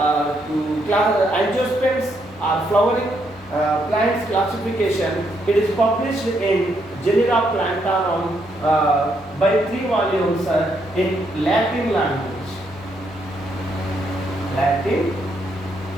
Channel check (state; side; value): normal; both; correlation 0.76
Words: angiosperms or flowering plants classification, it is published in Genera Plantarum by 3 volumes in Latin language.